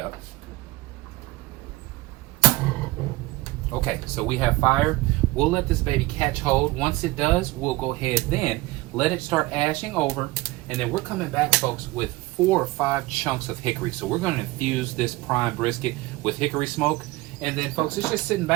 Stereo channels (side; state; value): left; quieter; 20.1 dB